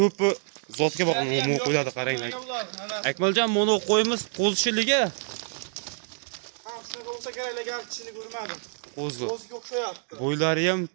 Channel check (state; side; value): silent; left; 60 dB below the other